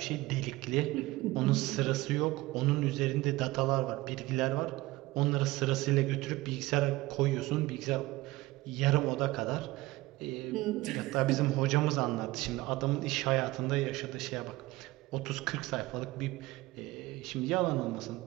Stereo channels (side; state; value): left; quieter; 19.3 dB